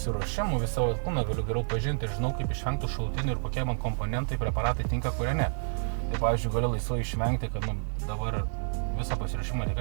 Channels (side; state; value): left; silent; digital silence